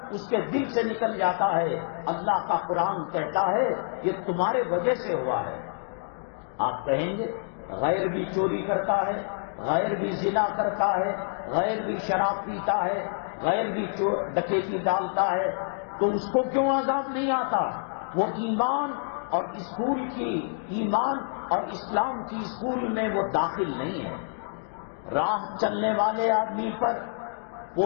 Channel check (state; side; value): silent; right; digital silence